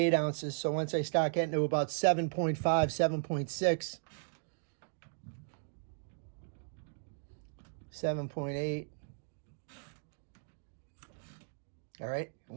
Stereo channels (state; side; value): silent; left; digital silence